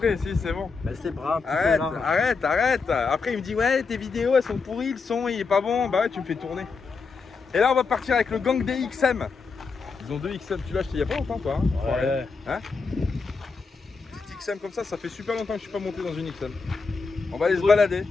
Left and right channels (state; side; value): quieter; right; 4.7 dB